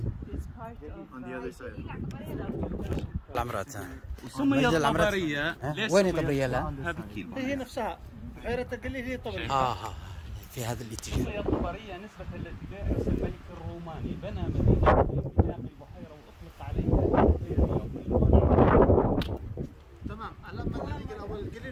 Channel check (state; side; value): identical; both; correlation 1.00